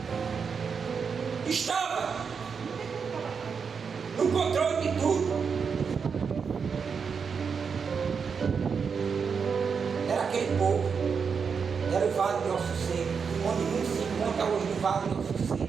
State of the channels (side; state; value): left; quieter; 6.0 dB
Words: estava no controle de tudo, era aquele povo, era o Vale de Ossos Secos, onde muitos se encontram hoje no Vale de Ossos